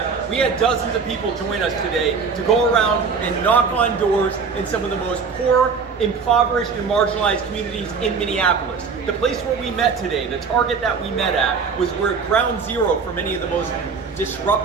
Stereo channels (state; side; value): quieter; left; 5.4 dB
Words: We had dozens of people join us today to go around and knock on doors in some of the most poor, impoverished, and marginalized communities in Minneapolis. The place where we met today, the target that we met at, was where ground zero for many of the most